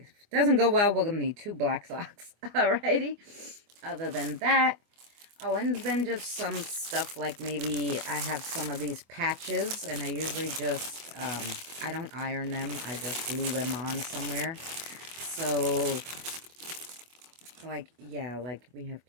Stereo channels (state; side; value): late; left; 24 ms